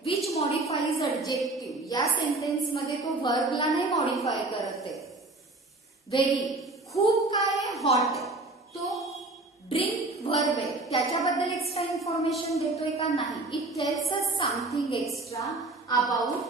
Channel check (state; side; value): quieter; left; 3.1 dB